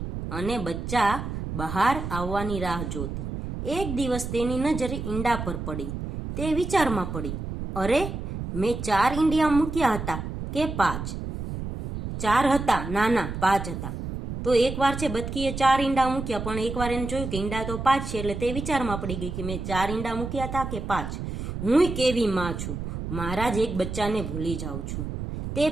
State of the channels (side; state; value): right; noise; rumble, 6 dB below the sound